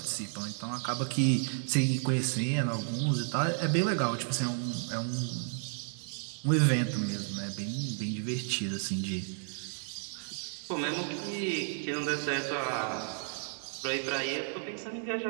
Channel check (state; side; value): silent; left; 56 dB below the other